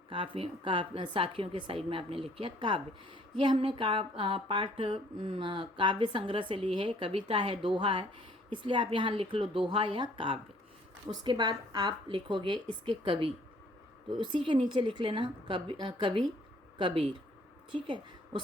साखियों के साइड में आपने लिख किया काव्य। ये हमने पाठ काव्य संग्रह से ली है, कविता है, दोहा है, इसलिए आप यहाँ लिख लो दोहा या काव्य। उसके बाद आप लिखोगे इसके कवि, तो उसी के नीचे लिख लेना कवि कबीर, ठीक है।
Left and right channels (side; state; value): both; normal; correlation 0.59